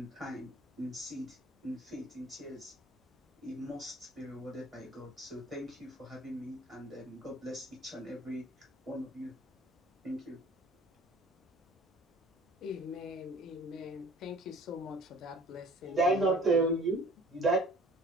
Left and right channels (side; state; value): both; normal; correlation 0.49